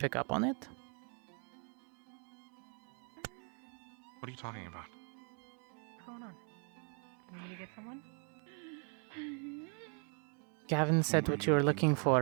up on it? What are you talking about? What's going on? You need to get someone? Gavin said what you were looking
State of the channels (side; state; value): left; quieter; 38.7 dB